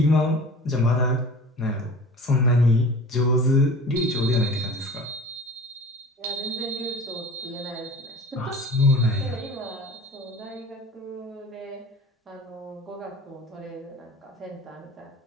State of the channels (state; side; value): normal; both; correlation 0.40